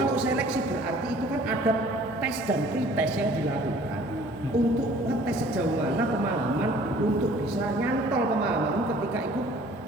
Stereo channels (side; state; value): both; normal; correlation 0.53